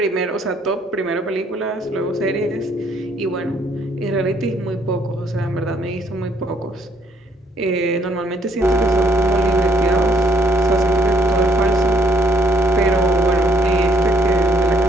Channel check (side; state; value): both; normal; correlation 0.67